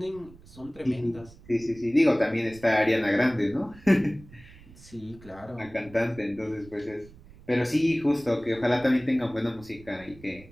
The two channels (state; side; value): noise; right; rumble, 21 dB below the sound